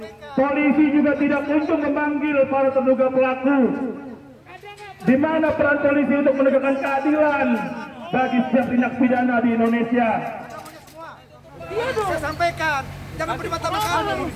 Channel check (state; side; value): identical; both; correlation 1.00